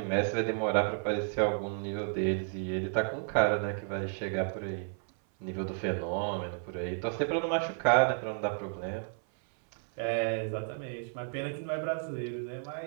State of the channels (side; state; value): left; silent; 56 dB below the other